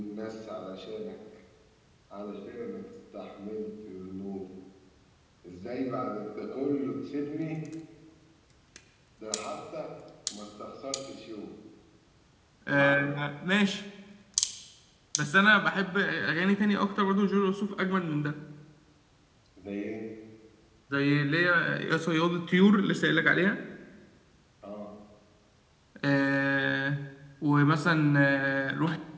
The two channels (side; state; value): both; identical; correlation 1.00